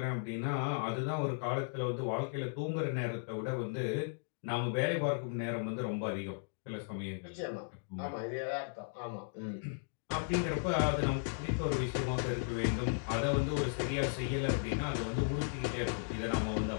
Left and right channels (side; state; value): right; silent; digital silence